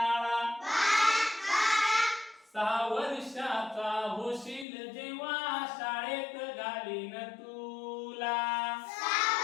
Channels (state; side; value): drops out; right; at 4.7 s